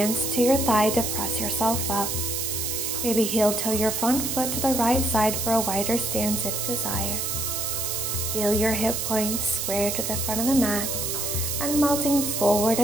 to your thigh to press yourself up. Maybe heel toe your front foot to the right side for a wider stance if desired. Feel your hip points square to the front of the mat and melting forward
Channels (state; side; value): noise; right; hiss, 1 dB below the sound